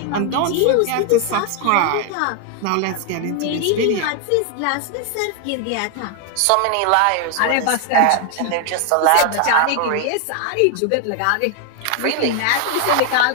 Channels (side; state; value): both; different; correlation 0.00